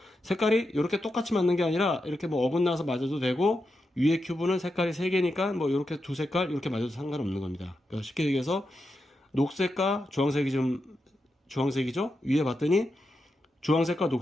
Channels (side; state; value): both; normal; correlation 0.87